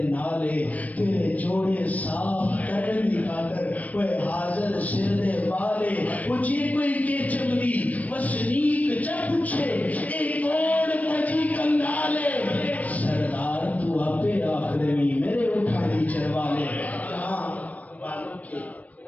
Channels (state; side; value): late; right; 0.071 ms